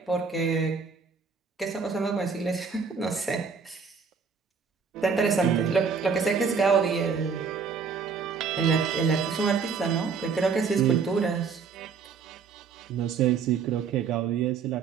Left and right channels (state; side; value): quieter; left; 5.7 dB